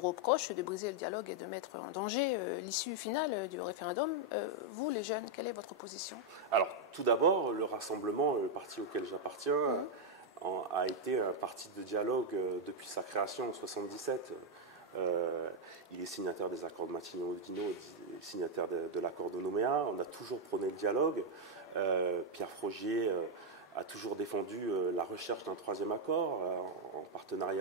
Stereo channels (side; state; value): both; normal; correlation 0.01